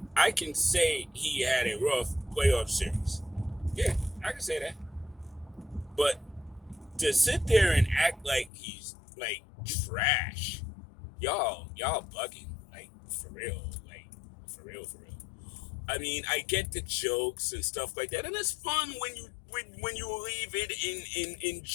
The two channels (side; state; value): right; drops out; at 8.5 s